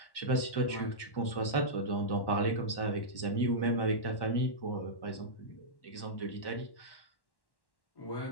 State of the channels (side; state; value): right; late; 1.1 ms